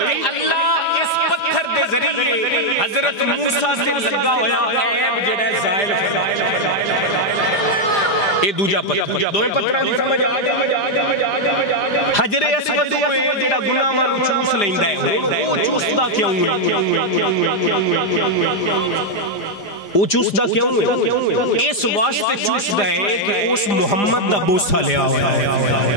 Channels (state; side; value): late; right; 5.0 ms